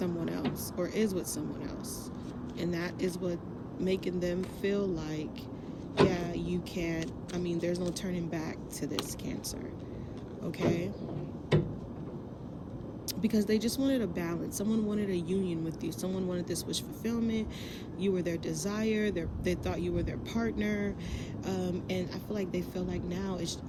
else or is with someone else. And that is what making them feel like, yeah, you can't, there's no turning back to this, Cancer, okay? Because they just wanted a balance. Someone wanted a union with you. Someone wanted this wish fulfillment. You were their desire. They thought you were their partner. And I feel like they feel like now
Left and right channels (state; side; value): identical; both; correlation 1.00